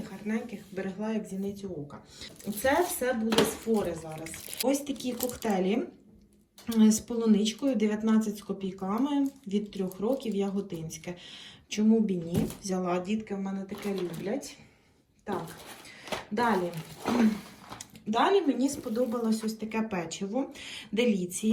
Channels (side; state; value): both; identical; correlation 1.00